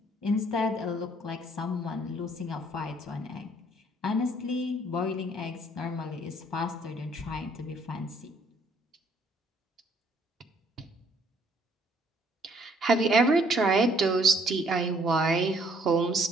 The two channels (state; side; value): normal; both; correlation 0.63